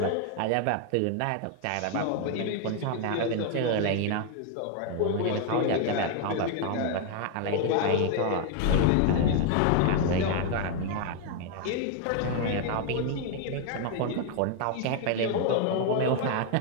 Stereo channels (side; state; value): both; different; correlation 0.01